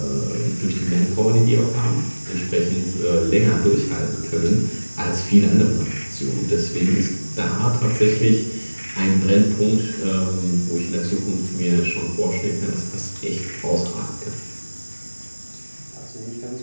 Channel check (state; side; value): inverted; both; correlation -1.00